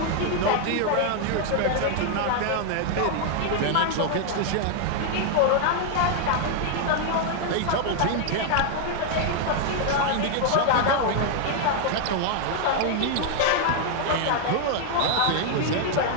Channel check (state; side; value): different; both; correlation 0.00